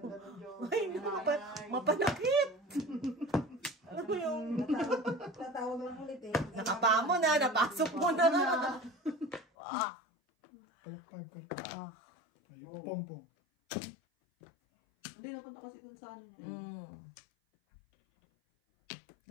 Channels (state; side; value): drops out; right; at 9.5 s